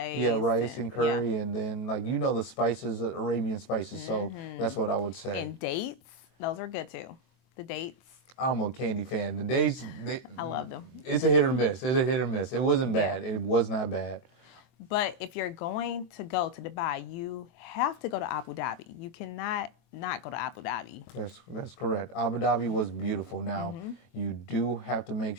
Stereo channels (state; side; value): late; right; 23 ms